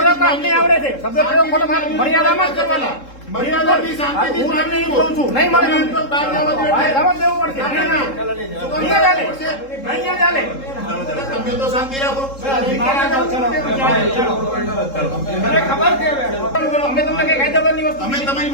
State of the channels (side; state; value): right; late; 3.7 ms